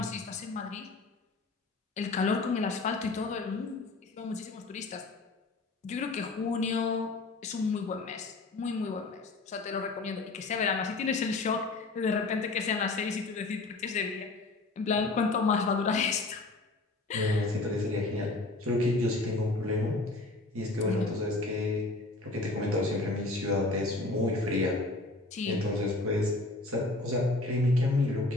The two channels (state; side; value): quieter; right; 3.2 dB